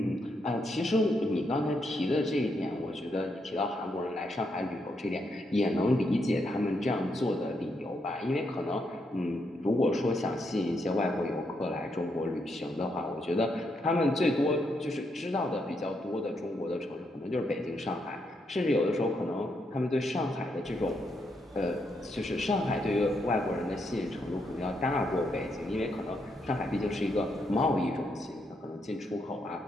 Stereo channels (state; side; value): normal; both; correlation 0.79